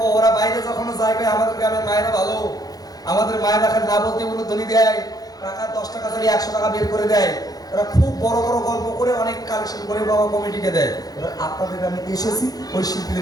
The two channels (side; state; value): right; late; 0.18 ms